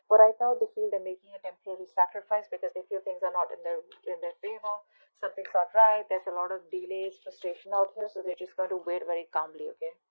But right now they feel they're making a temporary sacrifice because they feel things are not in their favor. Something's not right. There's a lot of delays, frustration out here, so they're just going to wait very calmly, okay?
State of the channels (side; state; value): both; inverted; correlation -1.00